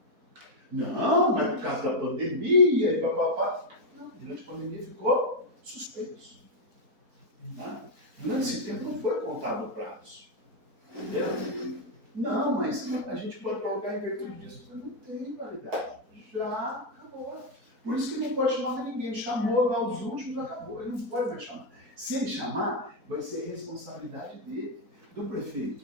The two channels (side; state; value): left; late; 4.3 ms